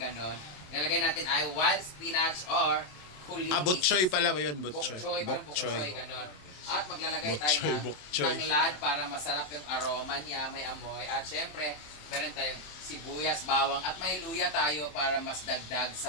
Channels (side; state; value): right; late; 27 ms